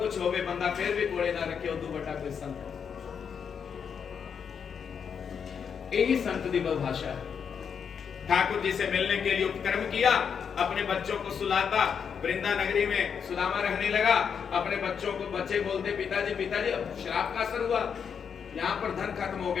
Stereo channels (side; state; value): right; quieter; 7.0 dB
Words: होवे बंदा फिर भी कोले ना रखे, उदू बटा कोई संत। यही संत दी भाषा है। ठाकुर जी से मिलने के लिए उपक्रम किया, अपने बच्चों को सुलाता। वृंदा नगरी में सुदामा रहने लगा। अपने बच्चों को, बच्चे बोलते पिताजी पिताजी अब शराब का असर हुआ, यहाँ पर धन खत्म हो